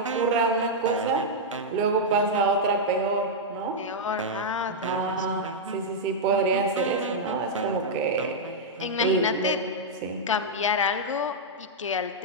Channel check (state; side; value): normal; both; correlation -0.05